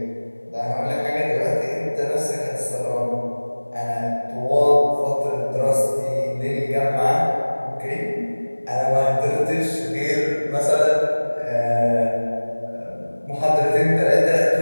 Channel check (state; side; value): inverted; both; correlation -1.00